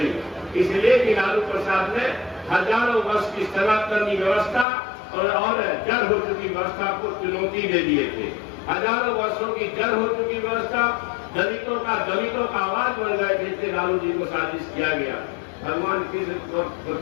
इसलिए कि लालू प्रसाद ने हजारों वर्ष की सनातनी व्यवस्था और जड़ हो चुकी व्यवस्था को चुनौती दे दिए थे। हजारों वर्षों की जड़ हो चुकी व्यवस्था, दलितों का आवाज बन गए थे, इसलिए लालू जी को साजिश किया गया। भगवान कृष्ण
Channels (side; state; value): right; drops out; at 4.7 s